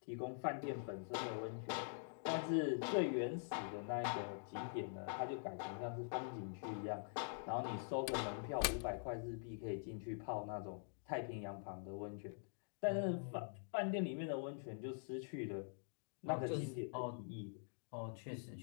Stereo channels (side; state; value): right; silent; digital silence